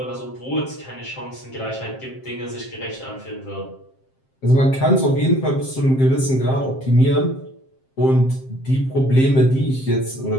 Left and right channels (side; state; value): right; late; 7.6 ms